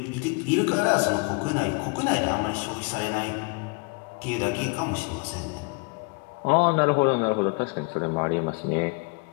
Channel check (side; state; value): right; quieter; 31.9 dB